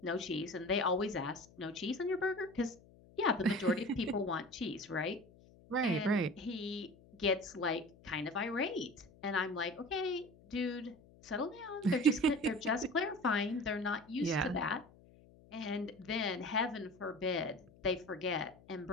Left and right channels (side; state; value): left; noise; hum, 25 dB below the sound